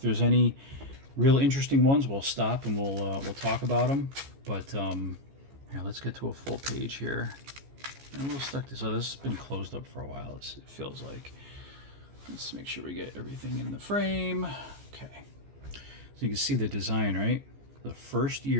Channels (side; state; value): left; late; 14 ms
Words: any real interesting ones, we'll stop and we'll talk about them. But yeah, let's get to a full page here. And we'll stuck this. So this has been closed up for a while. It feels like. Let's make sure we get everything in the frame. Okay. So you can see the design, right? The first